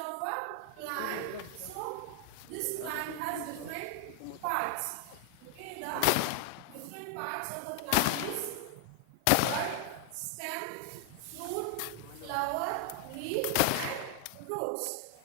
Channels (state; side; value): different; both; correlation 0.00